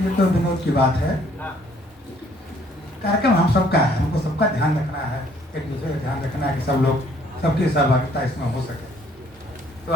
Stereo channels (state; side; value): normal; both; correlation 0.61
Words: ये तो विनोद की बात है। कार्यक्रम हम सबका है, हमको सबका ध्यान रखना है, एक दूसरे का ध्यान रखना है कि सब लोग, सबकी सहभागिता इसमें हो सके। तो